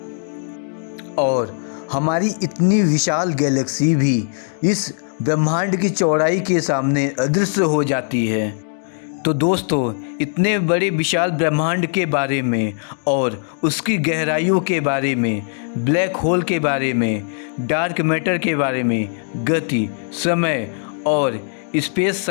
हमारी इतनी विशाल गैलेक्सी भी इस ब्रह्मांड की चौड़ाई के सामने अदृश्य हो जाती है। तो दोस्तों, इतने बड़े विशाल ब्रह्मांड के बारे में और उसकी गहराइयों के बारे में, ब्लैक होल के बारे में, डार्क मैटर के बारे में, गति, समय और स्पेस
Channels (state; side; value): silent; right; digital silence